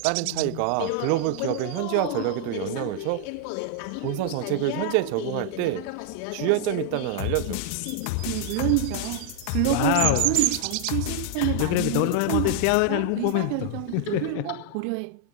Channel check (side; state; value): both; different; correlation 0.00